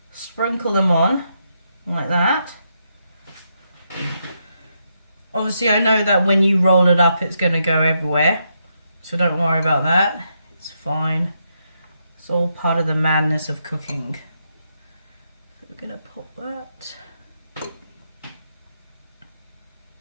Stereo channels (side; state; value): both; inverted; correlation -0.80